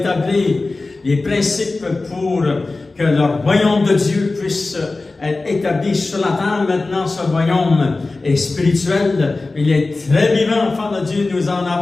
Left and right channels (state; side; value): quieter; right; 3.4 dB